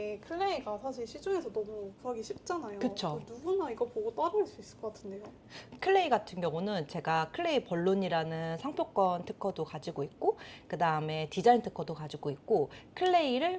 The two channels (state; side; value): identical; both; correlation 1.00